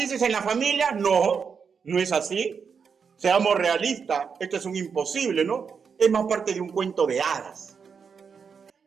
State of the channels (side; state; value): left; quieter; 6.1 dB